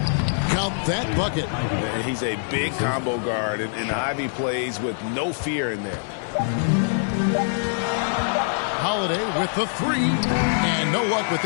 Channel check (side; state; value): right; silent; digital silence